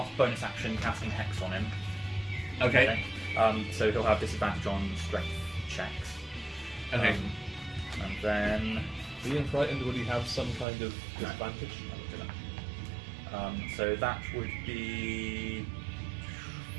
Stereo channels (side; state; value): left; drops out; at 10.7 s